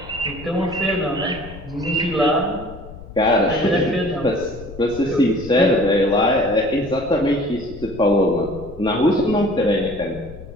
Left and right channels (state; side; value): noise; left; rumble, 16 dB below the sound